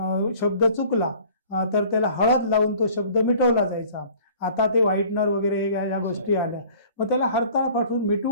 शब्द चुकला तर त्याला हळद लावून तो शब्द मिटवला जायचा. आता ते व्हाईटनर वगैरे या गोष्टी आल्या. मग त्याला हरताळ फाटून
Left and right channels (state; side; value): inverted; both; correlation -0.50